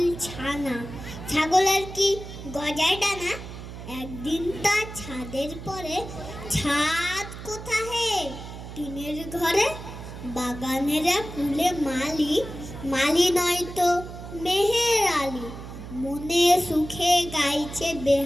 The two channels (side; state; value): right; noise; hum, 11 dB below the sound